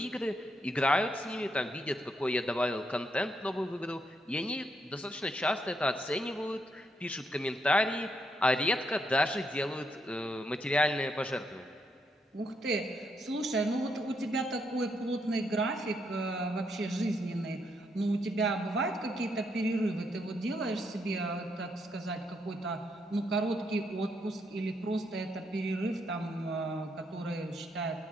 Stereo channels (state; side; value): normal; both; correlation 0.77